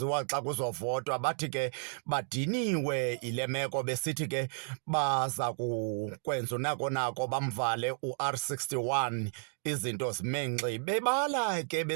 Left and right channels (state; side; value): silent; left; 56 dB below the other